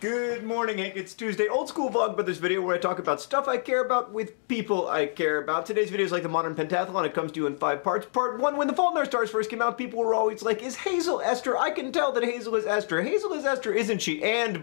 Good morning, Hank. It's Tuesday. Old school Vlogbrothers video where I talk about stuff I care about with people I care about. Today's video is like the modern pentathlon. It comes to you in 5 parts. Part 1, when The Fault in Our Stars first came out, people were always like, is Hazel Esther? I can tell that Hazel is Esther. Hazel is Esther, isn't she?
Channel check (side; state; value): right; silent; digital silence